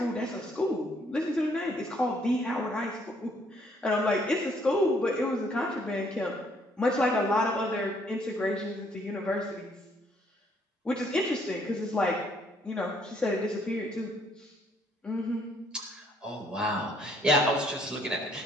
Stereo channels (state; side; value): normal; both; correlation 0.66